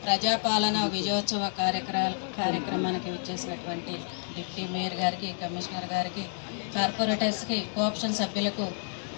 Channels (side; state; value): right; silent; 58 dB below the other